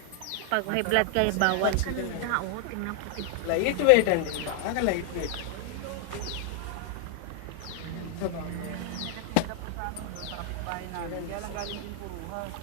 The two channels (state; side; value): different; both; correlation 0.00